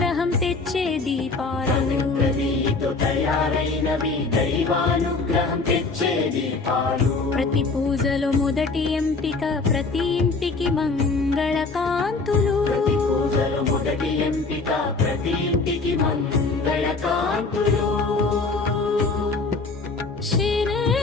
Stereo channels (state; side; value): quieter; right; 3.9 dB